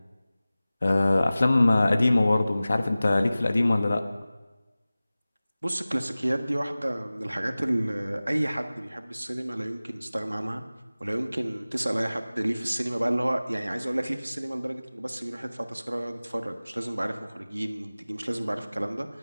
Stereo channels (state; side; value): inverted; both; correlation -0.97